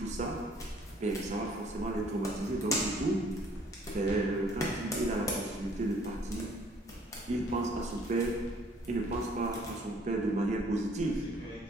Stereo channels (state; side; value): normal; both; correlation 0.60